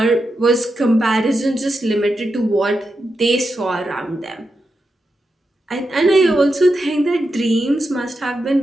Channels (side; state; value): both; normal; correlation 0.87